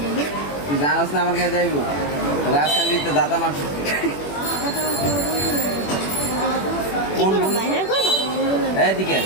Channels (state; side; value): late; right; 21 ms